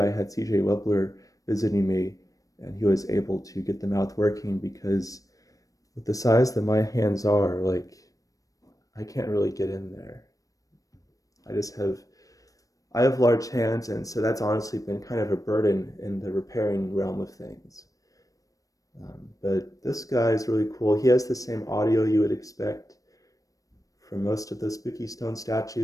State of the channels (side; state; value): right; late; 0.16 ms